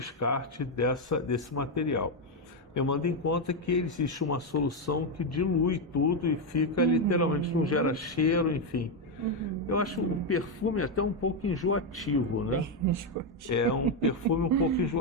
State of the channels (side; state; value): both; normal; correlation 0.05